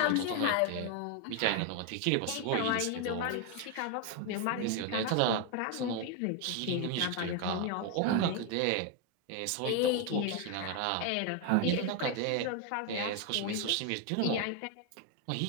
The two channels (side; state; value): both; different; correlation 0.01